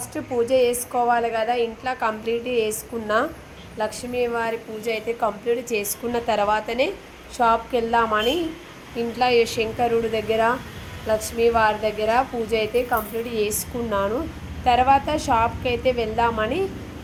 పూజ చేసుకోవాలి కదా. ఇంట్లో కంప్లీట్ చేసుకున్నా, లక్ష్మీవారి పూజ అయితే కంప్లీట్ చేసుకున్న తర్వాతనే షాప్కి వెళ్దామని ఇంట్లో శంకరుడు దగ్గర లక్ష్మీవారి దగ్గర పూజ అయితే కంప్లీట్ చేసుకున్నాను. తర్వాత షాప్కి అయితే వెళ్దామని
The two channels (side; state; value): both; identical; correlation 1.00